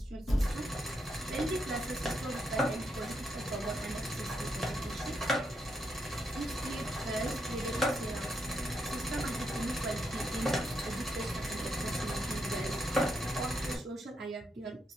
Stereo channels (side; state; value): both; normal; correlation 0.80